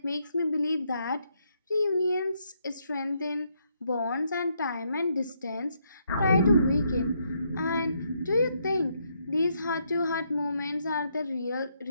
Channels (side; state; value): both; inverted; correlation -0.76